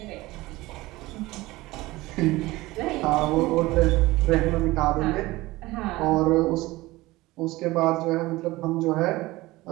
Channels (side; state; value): left; quieter; 19.5 dB